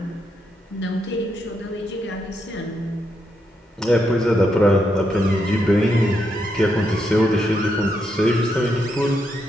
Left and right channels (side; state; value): both; normal; correlation 0.80